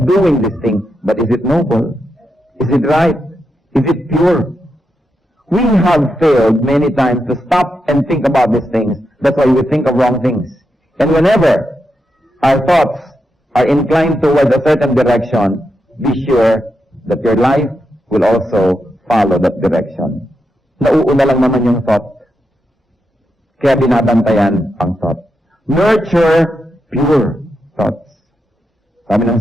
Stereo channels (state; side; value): normal; both; correlation 0.85